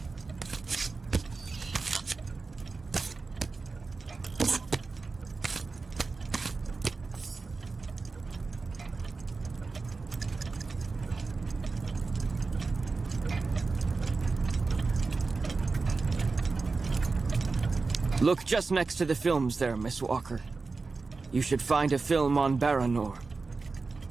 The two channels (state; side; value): quieter; left; 4.1 dB